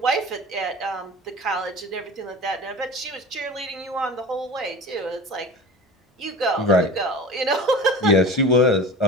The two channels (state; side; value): normal; both; correlation 0.35